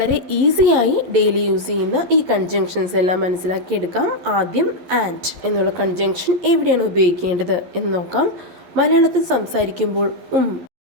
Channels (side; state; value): left; late; 11 ms